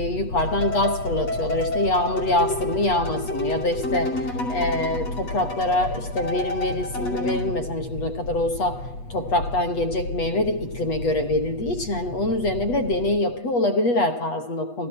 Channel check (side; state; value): right; late; 8.2 ms